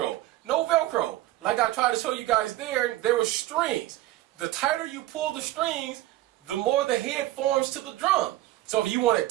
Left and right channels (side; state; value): left; quieter; 16.1 dB